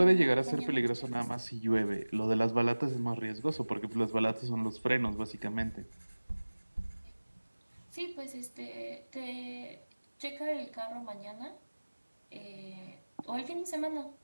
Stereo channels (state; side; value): inverted; both; correlation -1.00